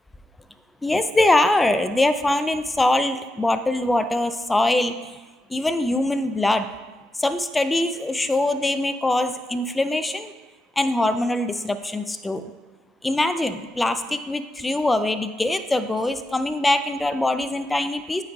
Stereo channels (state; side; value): normal; both; correlation 0.88